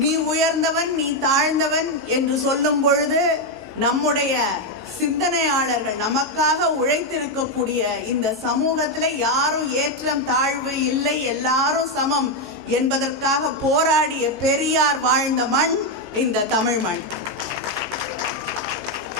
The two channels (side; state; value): right; noise; hum, 29 dB below the sound